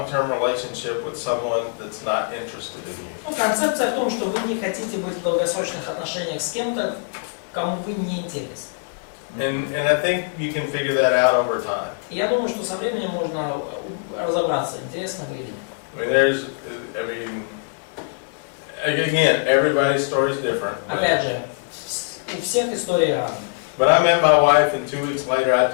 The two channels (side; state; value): right; silent; 63 dB below the other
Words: relationship with someone that's not interested in you. Ну, концепция в том, что вы не хотите быть в долгосрочных отношениях с кем-то, кому вы не интересны. And I think you can figure that out over time. Я думаю, что со временем можно разобраться, интересно вы или нет. I mean, again, everybody's story is different. Опять же, у всех истории разные. But I met my wife, and 2 weeks later, I